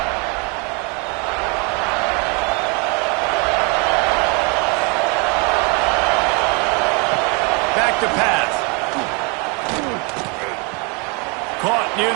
Back to pass. Caught near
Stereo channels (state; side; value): quieter; left; 32.4 dB